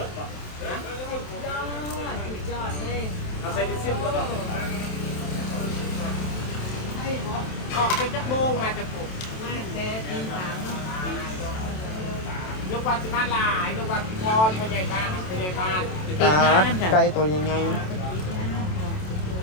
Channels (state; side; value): late; right; 27 ms